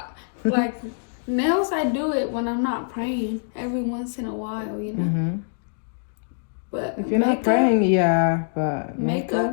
like. Nails, I do it when I'm not praying every once in a while, you know. But if you're not praying, but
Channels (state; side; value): silent; right; digital silence